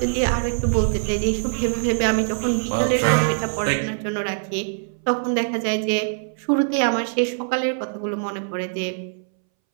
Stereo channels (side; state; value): left; silent; 63 dB below the other